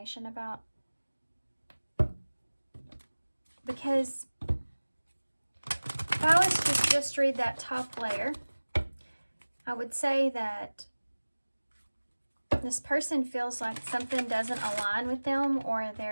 about, because if I was to just read that top layer, I would say that this person feels like something doesn't align with them, or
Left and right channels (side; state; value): both; inverted; correlation -1.00